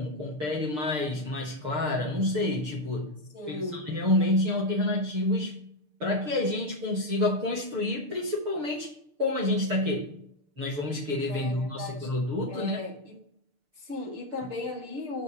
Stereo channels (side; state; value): left; late; 6.7 ms